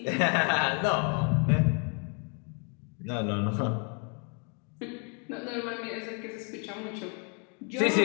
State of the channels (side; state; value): right; quieter; 37.4 dB